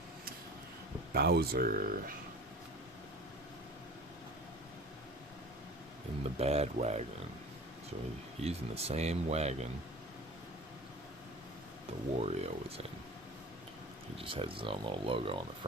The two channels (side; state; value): both; normal; correlation 0.39